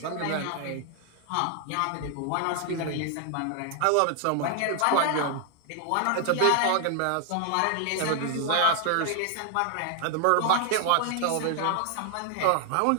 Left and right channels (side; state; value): both; different; correlation 0.00